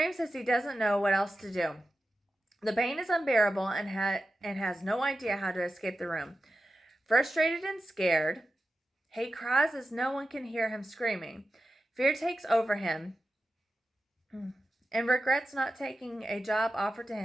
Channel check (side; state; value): both; normal; correlation 0.92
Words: as he doesn't know what else to do. The pain is unbearable and has no idea how to escape the room. Frustrated and scared, he cries as no one can hear him screaming. Fear takes over him and regrets not taking a job offered to